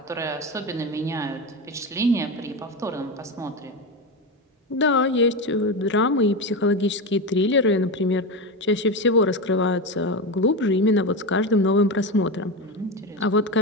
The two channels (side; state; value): both; normal; correlation 0.17